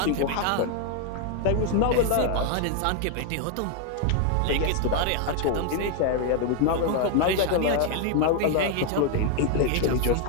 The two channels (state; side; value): different; both; correlation 0.01